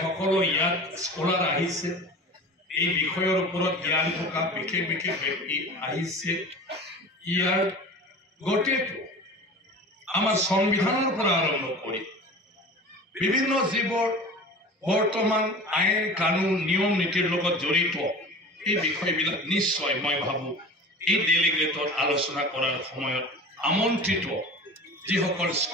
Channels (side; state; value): both; normal; correlation 0.36